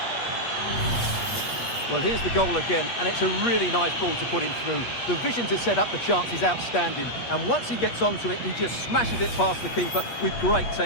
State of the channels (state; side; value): late; right; 8.4 ms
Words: Well, here's the goal again, and it's a really nice ball to put him through. The vision to set up the chance is outstanding, and once he gets onto it, he just smashes it past the keeper with great